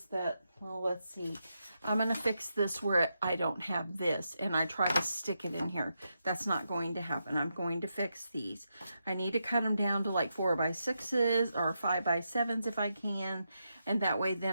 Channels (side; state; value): both; inverted; correlation -0.85